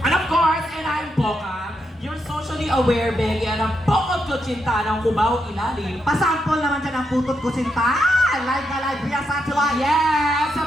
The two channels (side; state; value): both; normal; correlation 0.82